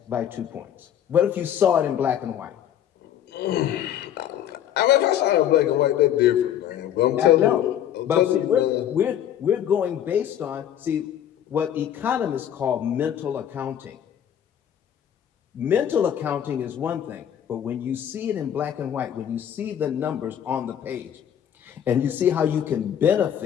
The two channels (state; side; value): quieter; right; 10.1 dB